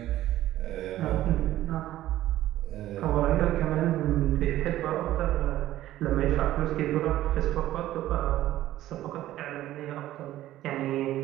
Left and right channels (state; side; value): quieter; left; 14.2 dB